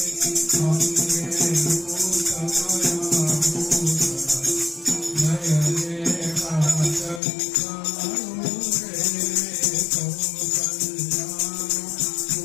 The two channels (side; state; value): right; drops out; at 7.2 s